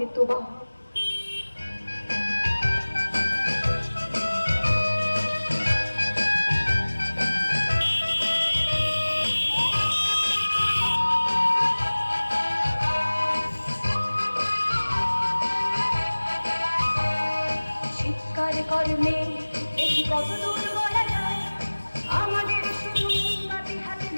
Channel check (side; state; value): both; inverted; correlation -1.00